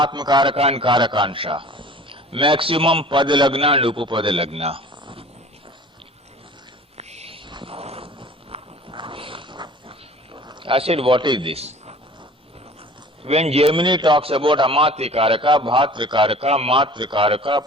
and Karakansha. Maximum Padalagna and Upapadalagna. I said, what is this? When Gemini talks about Amatyakaraka, Bhatrakaraka,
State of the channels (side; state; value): both; normal; correlation 0.45